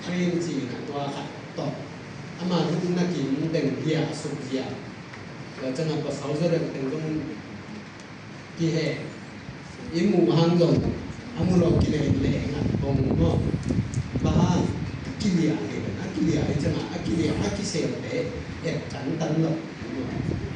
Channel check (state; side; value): identical; both; correlation 1.00